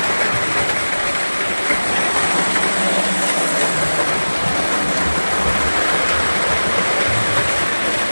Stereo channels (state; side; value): inverted; both; correlation -1.00